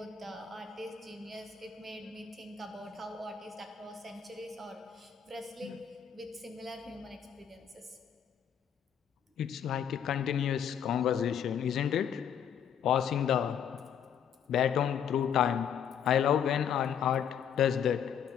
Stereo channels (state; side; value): quieter; right; 8.4 dB